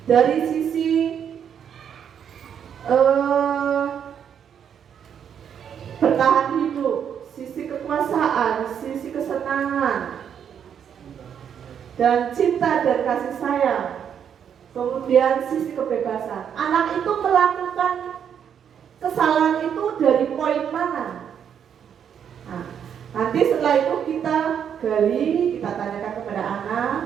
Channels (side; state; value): left; quieter; 8.3 dB